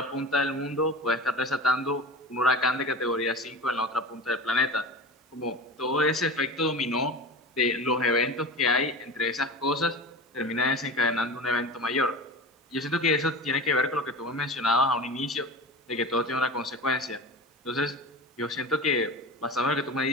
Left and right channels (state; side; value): normal; both; correlation 0.31